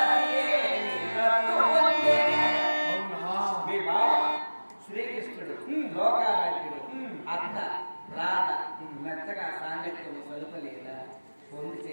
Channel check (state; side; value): inverted; both; correlation -1.00